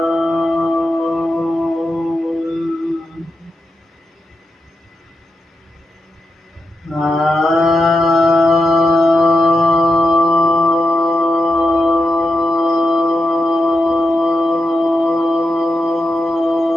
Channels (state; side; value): normal; both; correlation 0.87